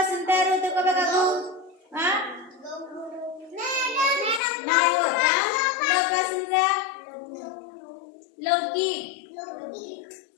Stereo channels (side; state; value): right; drops out; at 4.4 s